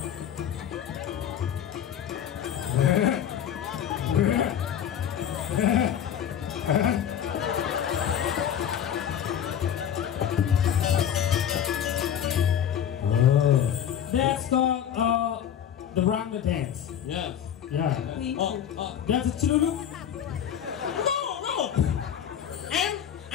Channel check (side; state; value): right; quieter; 9.3 dB